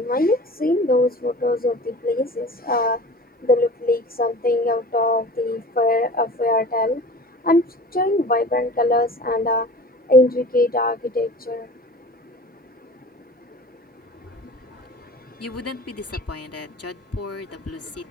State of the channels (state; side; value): normal; both; correlation 0.40